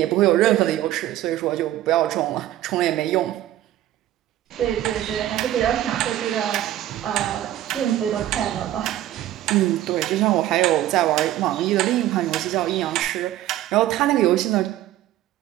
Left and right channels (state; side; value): quieter; left; 13.4 dB